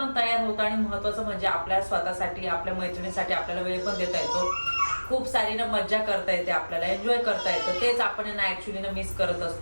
तयार होतो. आणि महत्त्वाचं म्हणजे आपल्या स्वतःसाठी, आपल्या मैत्रिणीसाठी आपल्याला वेळ पण देता येतो. खूप सारी ना मज्जा करता येते, आपल्याला एन्जॉय करता येतं. तेच आपण ना ॲक्च्युली ना मिस करत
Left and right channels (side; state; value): both; inverted; correlation -1.00